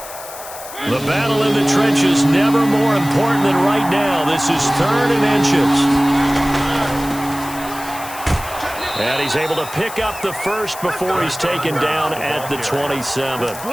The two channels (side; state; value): left; noise; hiss, 14 dB below the sound